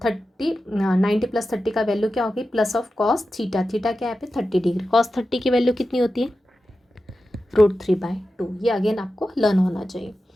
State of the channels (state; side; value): normal; both; correlation 0.92